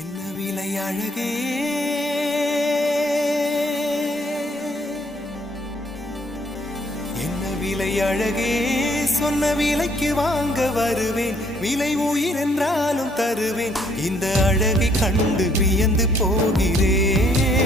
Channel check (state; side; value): normal; both; correlation 0.66